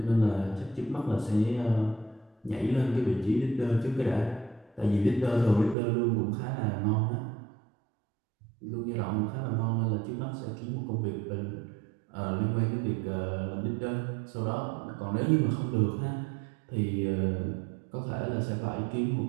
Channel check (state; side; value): drops out; left; at 5.8 s